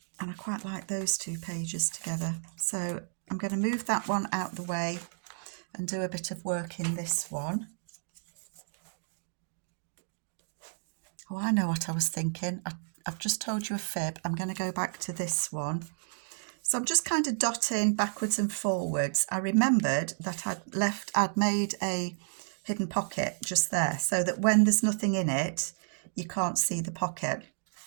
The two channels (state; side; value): silent; left; digital silence